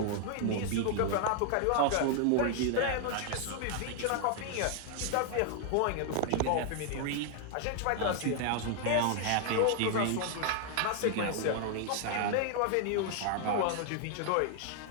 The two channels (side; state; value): both; different; correlation 0.00